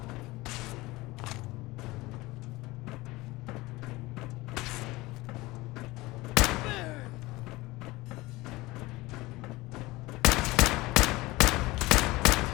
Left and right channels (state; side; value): quieter; right; 20.6 dB